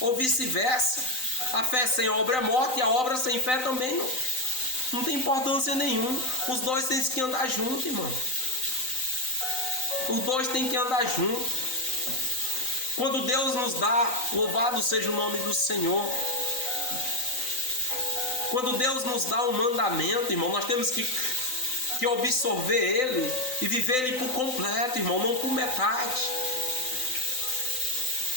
vice-versa. A fé sem obra é morta e a obra sem fé também não tem importância nenhuma. Os dois têm que andar juntos, irmão. Os dois têm que andar juntos. Quando Deus nos dá, louvado seja o nome do Senhor. Quando Deus nos dá um mandamento, irmão, nós temos que absorver ele e viver ele por completo, irmão, não por metade.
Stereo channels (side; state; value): right; late; 3.9 ms